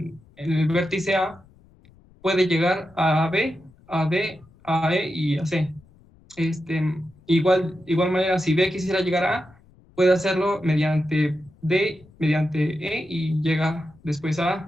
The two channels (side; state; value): left; noise; rumble, 28 dB below the sound